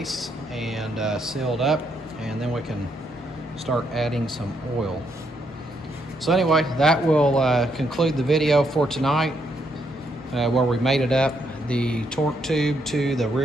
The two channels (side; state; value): both; normal; correlation 0.75